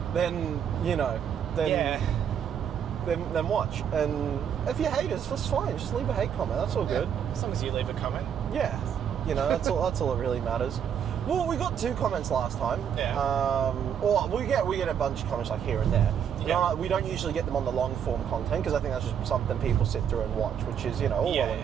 then, then watch. And if you're haters, that's fine. Just leave a hate comment. That's all good. As long as you leave a comment. Yeah. That's all that really matters. Well, we got 2 comments last time. Yeah. Or we get a bunch of comments like here and there. Yeah. We don't usually get them on the long form content because I think that's just something people sit through and watch, which is, all well and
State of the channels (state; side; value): quieter; left; 8.4 dB